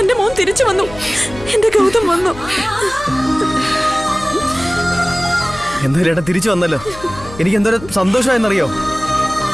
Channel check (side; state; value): left; noise; hum, 16 dB below the sound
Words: മോൻ തിരിച്ചു വന്നു, എന്റെ ഗൗതം വന്നു. എന്തായാലും ഏട്ടാ തിരിച്ചു വന്നല്ലോ, എനിക്ക് എന്തോരം സന്തോഷമായെന്നറിയോ?